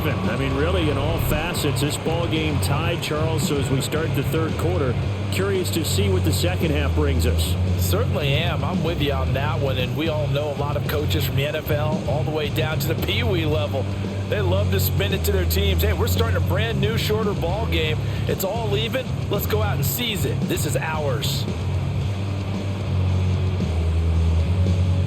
I mean, really, in all facets, this ball game tied, Charles. So as we start the third quarter, curious to see what the second half brings us. Certainly am. I'm with you on that one. And we all know a lot of coaches from the NFL all the way down to the Pee Wee level. They love to spin it to their teams. Hey, we're starting a brand new, shorter ball game. It's all even. Let's go out and seize it. This is ours.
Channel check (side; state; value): both; identical; correlation 1.00